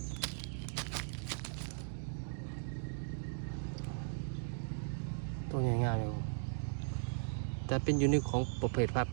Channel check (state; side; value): silent; left; digital silence